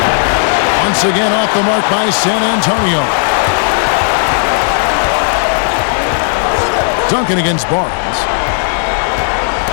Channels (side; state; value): right; silent; digital silence